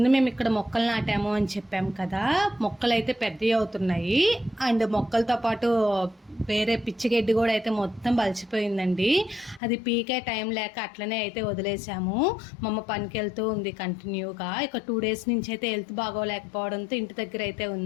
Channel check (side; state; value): right; drops out; at 9.6 s